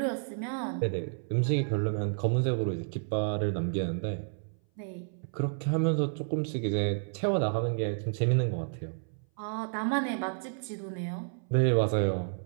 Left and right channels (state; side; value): silent; left; 57 dB below the other